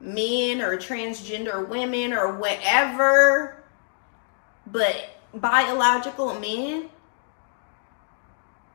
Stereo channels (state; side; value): silent; right; digital silence